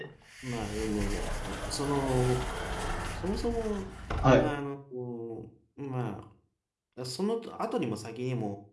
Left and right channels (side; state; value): both; identical; correlation 1.00